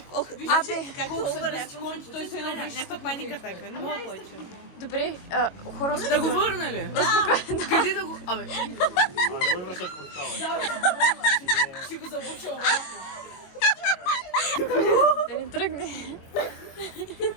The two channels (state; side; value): late; right; 22 ms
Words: са върнеш, той се едно някаква паника така, не мога повече. Добре, хора... Да го върна ли? Къде да го... Абе... Кой връщаш портала? Си го забуча обратно. Да ни тръгне.